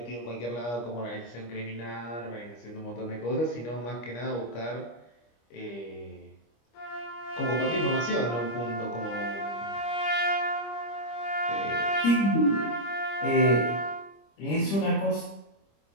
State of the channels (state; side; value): late; right; 25 ms